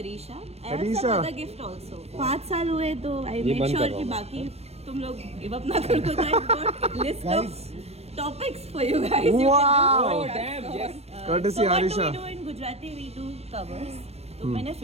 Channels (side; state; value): left; late; 0.31 ms